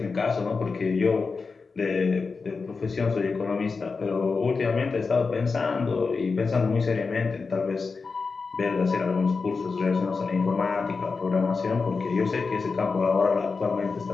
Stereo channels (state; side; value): quieter; right; 4.6 dB